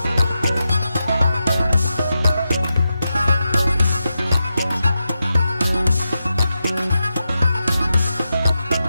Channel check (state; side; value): inverted; both; correlation -0.89